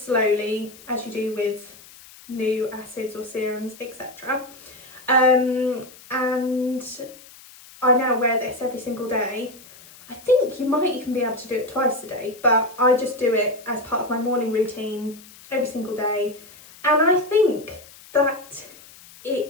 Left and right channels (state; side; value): noise; left; hiss, 21 dB below the sound